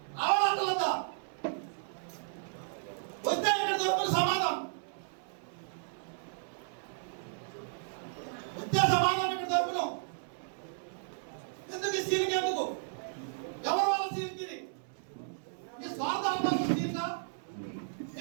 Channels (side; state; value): left; silent; 55 dB below the other